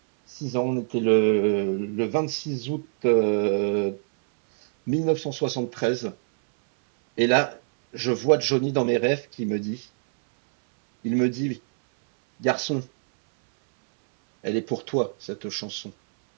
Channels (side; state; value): left; silent; 62 dB below the other